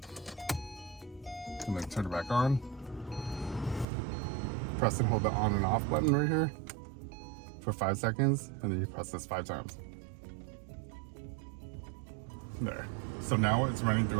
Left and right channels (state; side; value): drops out; left; at 3.9 s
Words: and then turn it back on. Press and hold the on and off button right here for 5 seconds, and then you press this 5 times. There. So now it's running through